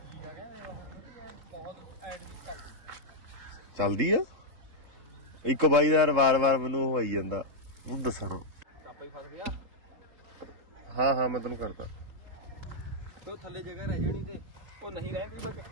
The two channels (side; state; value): left; late; 3.8 ms